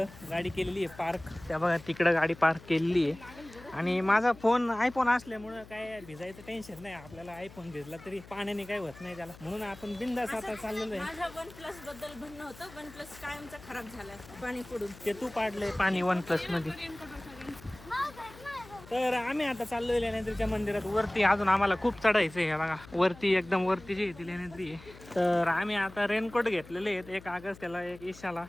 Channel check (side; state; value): left; noise; hum, 19 dB below the sound